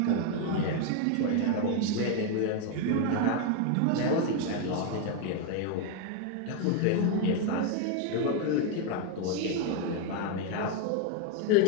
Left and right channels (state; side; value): different; both; correlation 0.01